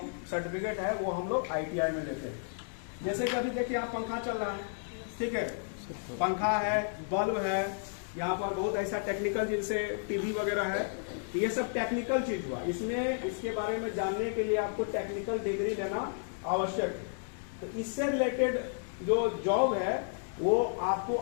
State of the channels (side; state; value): right; silent; digital silence